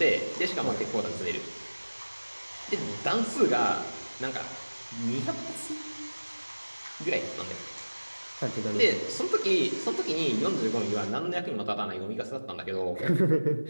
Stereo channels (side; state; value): both; inverted; correlation -1.00